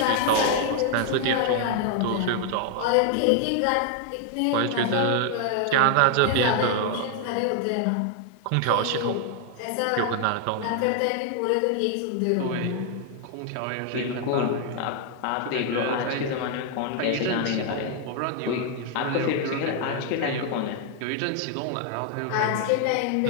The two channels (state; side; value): different; both; correlation 0.00